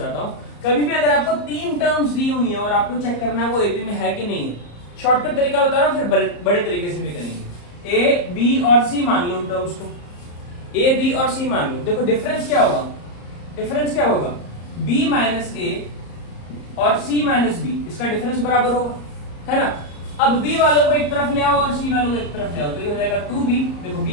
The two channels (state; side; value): late; right; 34 ms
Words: हूं। कभी भी अगर आपको 3 टर्म्स दी हुई है और आपको चेक करना है वो AP में है कि नहीं, शॉर्टकट तरीका बता रहा हूं, फिर बड़े तरीके से भी करेंगे। A, B और C मान लो उन टर्म्स को, A, B और C मान लो। देखो डिफरेंस क्या होगा? डिफरेंस क्या होगा? B माइनस A और C माइनस B, इसका डिफरेंस बराबर होगा, है ना। अब B वालों को एक तरफ ले आओ और C वालों को एक तरफ ले आओ, तो ये हो जाएगा 2B। देखो